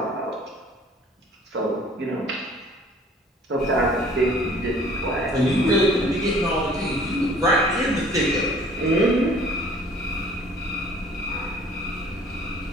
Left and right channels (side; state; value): both; normal; correlation 0.53